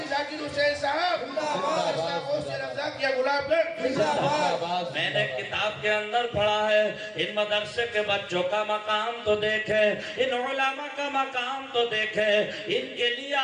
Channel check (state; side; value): identical; both; correlation 1.00